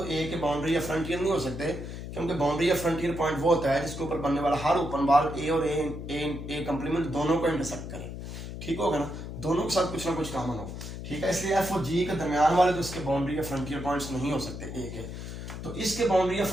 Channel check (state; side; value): noise; left; hum, 8 dB below the sound